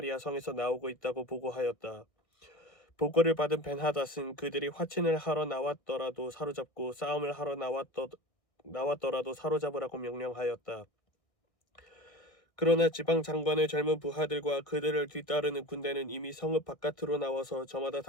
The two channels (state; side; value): late; right; 1.6 ms